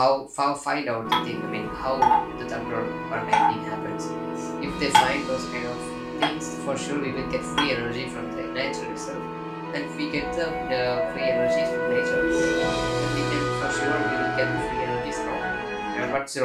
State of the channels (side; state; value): both; identical; correlation 1.00